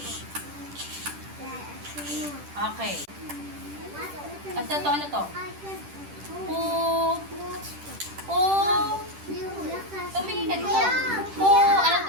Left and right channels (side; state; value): left; late; 10 ms